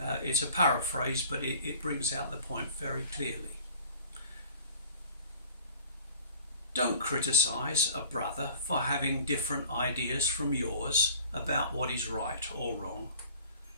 It's a paraphrase, but it brings out the point very clearly. Don't criticise a brother for having different ideas from yours about what is right or wrong.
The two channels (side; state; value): both; inverted; correlation -0.47